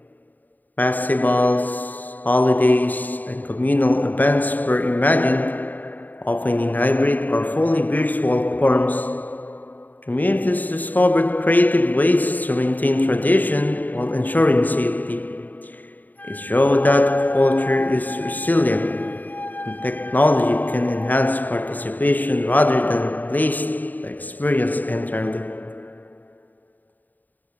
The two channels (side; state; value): right; late; 0.084 ms